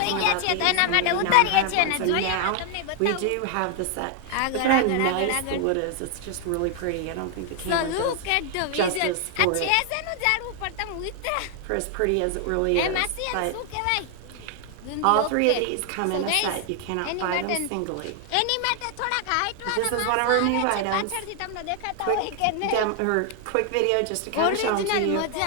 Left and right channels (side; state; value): both; different; correlation 0.00